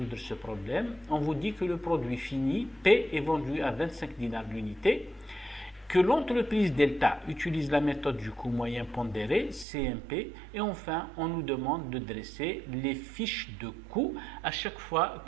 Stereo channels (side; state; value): left; drops out; at 9.7 s